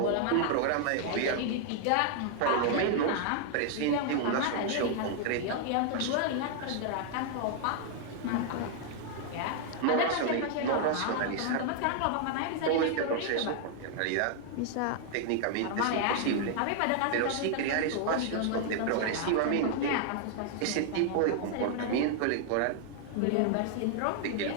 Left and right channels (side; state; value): both; different; correlation 0.00